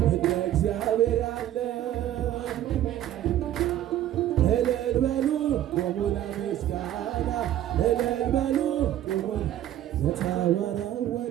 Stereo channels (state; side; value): quieter; left; 12.3 dB